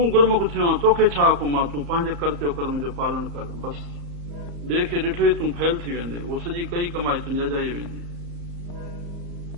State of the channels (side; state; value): left; late; 34 ms